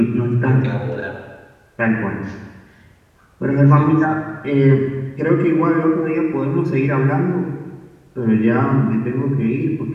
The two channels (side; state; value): both; identical; correlation 1.00